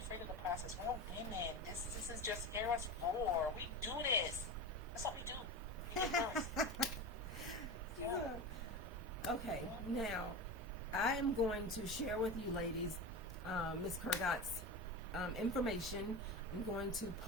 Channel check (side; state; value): both; normal; correlation 0.25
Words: of the process. We're women. This is just Eros 4. We do this. That's what we do. We do first. Yeah. Okay, now I am going to share with you ladies Miss Kurgat's information. I'm going to